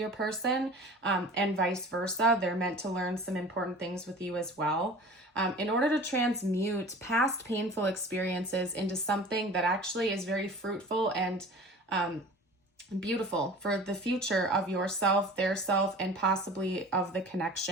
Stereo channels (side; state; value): both; normal; correlation 0.41